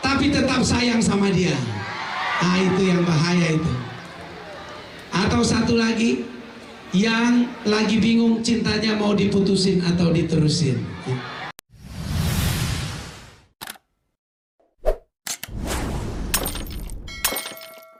tapi tetap sayang sama dia. Nah itu yang bahaya itu. Atau satu lagi, yang lagi bingung cintanya mau diputusin atau diterusin.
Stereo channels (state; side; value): identical; both; correlation 1.00